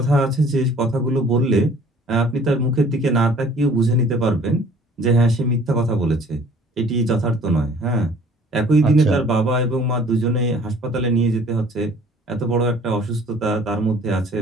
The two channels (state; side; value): normal; both; correlation 0.53